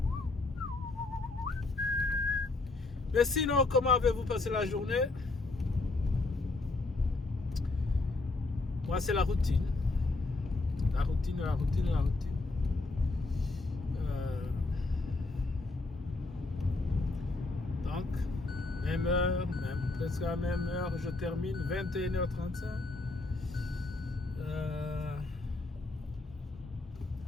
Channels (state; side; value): quieter; right; 3.3 dB